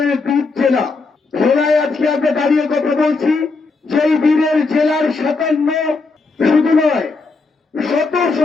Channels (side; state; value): right; quieter; 4.0 dB